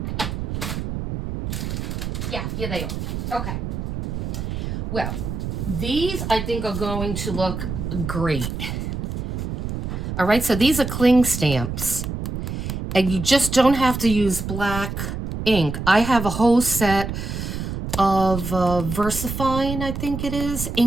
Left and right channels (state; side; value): noise; right; rumble, 4 dB below the sound